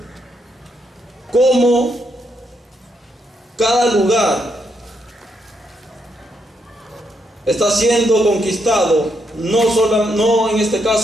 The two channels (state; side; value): normal; both; correlation 0.78